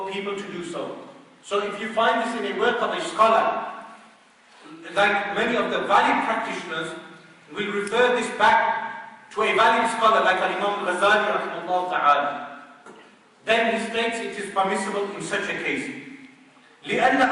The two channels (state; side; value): identical; both; correlation 1.00